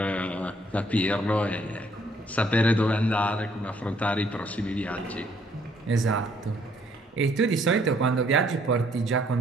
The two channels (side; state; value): both; normal; correlation 0.66